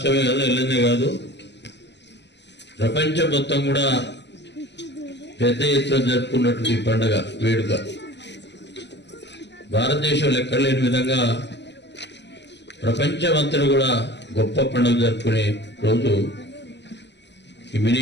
కాదు, వెళ్ళిందే కాదు, ప్రపంచం మొత్తం కూడా పెద్ద ఎత్తున జరుపుకున్నటువంటి పండుగ వేడుక. భారతదేశంలో ఎక్కడ లేని విధంగా ప్రపంచమంతా కూడా గొప్ప పండుగ జరుపుకునే రోజు ఈ మినీ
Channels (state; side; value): late; right; 0.51 ms